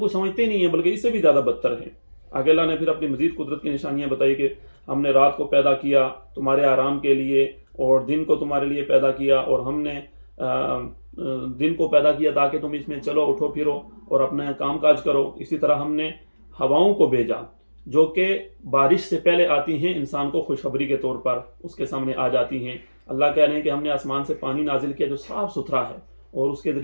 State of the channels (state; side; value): inverted; both; correlation -1.00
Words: سمجھتے نہیں ہیں بلکہ اس سے بھی زیادہ بدتر ہیں۔ آگے اللہ نے پھر اپنی مزید قدرت کی نشانیاں بتائی کہ ہم نے رات کو پیدا کیا تمہارے آرام کے لیے، اور دن کو تمہارے لیے پیدا کیا، اور ہم نے دن کو پیدا کیا تاکہ تم اس میں چلو اٹھو پھرو اور اپنا کام کاج کرو۔ اسی طرح ہم نے ہواؤں کو بھیجا جو کہ بارش سے پہلے آتی ہیں، انسان کو خوشخبری کے طور پر اس کے سامنے آ جاتی ہیں۔ اللہ کہہ رہے ہیں کہ ہم نے آسمان سے پانی نازل کیا جو صاف ستھرا ہے، اور اس کے